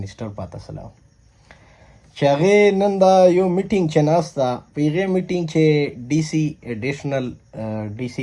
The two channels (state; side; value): identical; both; correlation 1.00